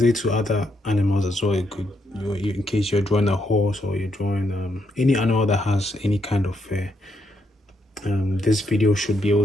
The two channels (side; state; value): both; normal; correlation 0.78